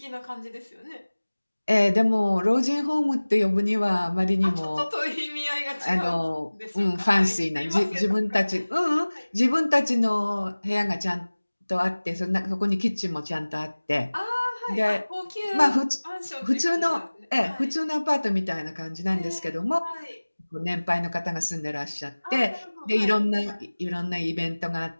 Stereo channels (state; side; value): inverted; both; correlation -1.00